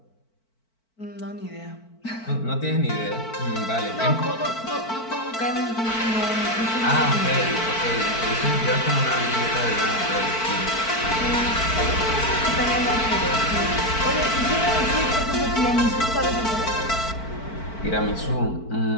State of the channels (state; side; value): late; right; 4.5 ms